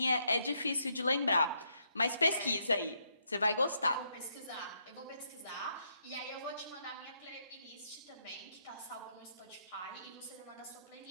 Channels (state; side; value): inverted; both; correlation -0.76